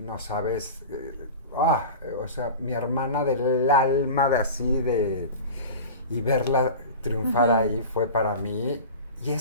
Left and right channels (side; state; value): both; inverted; correlation -0.33